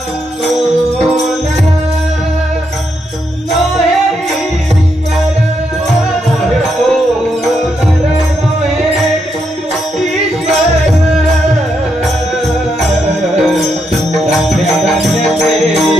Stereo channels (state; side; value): normal; both; correlation 0.80